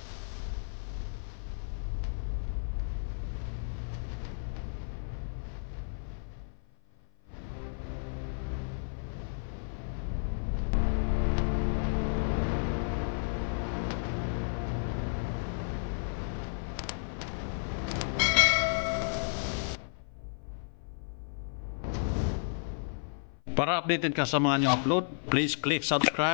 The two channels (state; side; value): silent; right; 56 dB below the other